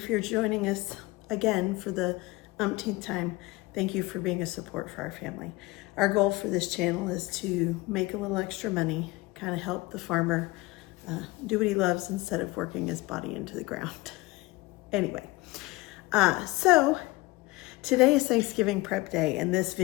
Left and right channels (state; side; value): quieter; right; 21.9 dB